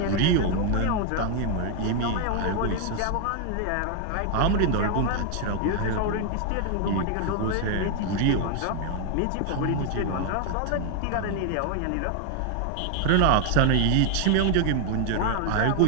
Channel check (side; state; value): both; different; correlation 0.00